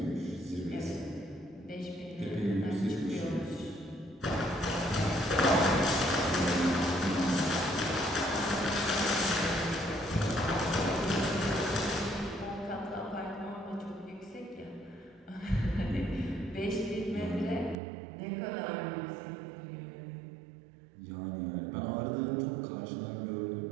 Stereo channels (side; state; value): left; drops out; at 17.8 s